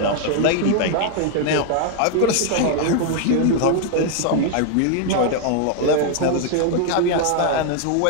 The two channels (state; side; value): different; both; correlation 0.00